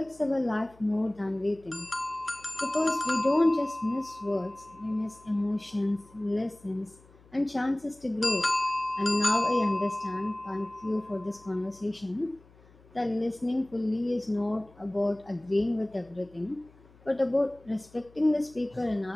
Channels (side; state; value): left; noise; hum, 26 dB below the sound